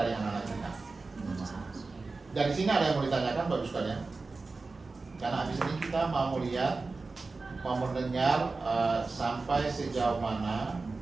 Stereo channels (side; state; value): left; quieter; 3.8 dB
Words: anak-anak kita. Dari sini ada yang mau ditanyakan, bagus sekalian. Karena habis ini kita mau lihat, mau mendengar sampai sejauh mana